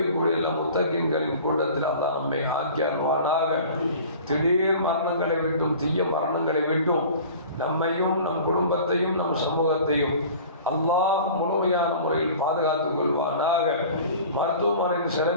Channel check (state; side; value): inverted; both; correlation -0.43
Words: முத்தகீன்களின் கூட்டத்தில் அல்லாஹ் நம்மை ஆக்கி அருள்வானாக. திடீர் மரணங்களை விட்டும் தீய மரணங்களை விட்டும் நம்மையும் நம் குடும்பத்தையும் நம் சமூகத்தையும் அல்லாஹ் முழுமையான முறையில் பாதுகாத்துக் கொள்வானாக. மருத்துவமனையின்